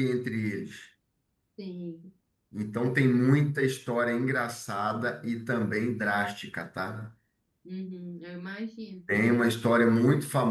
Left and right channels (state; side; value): identical; both; correlation 1.00